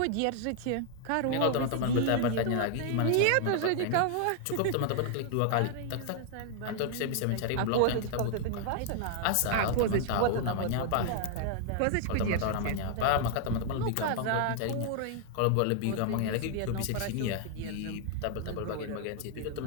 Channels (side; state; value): both; different; correlation 0.00